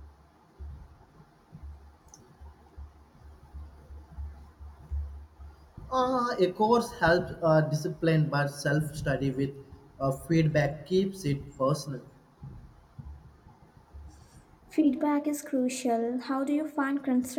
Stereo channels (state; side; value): identical; both; correlation 1.00